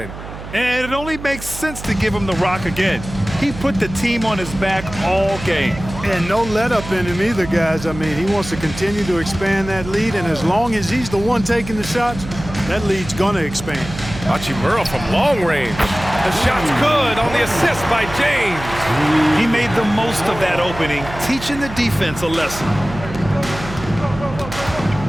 And it only makes sense to give him the rock again. He put the team on his back all game. And no let up in him either, guys. I mean, he wants to continue to expand that lead, and as long as he's the one taking the shots, that lead's going to expand. Hachimura from long range. The shot's good on the assist by James. He made the most of that opening, teaching the defense a lesson.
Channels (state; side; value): noise; right; hum, 12 dB below the sound